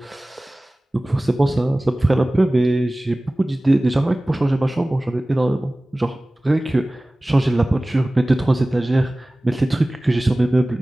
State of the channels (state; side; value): normal; both; correlation 0.98